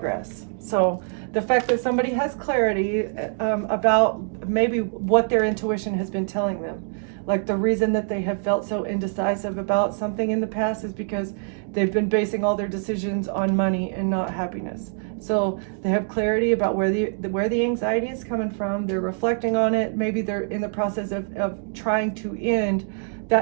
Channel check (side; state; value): left; silent; 57 dB below the other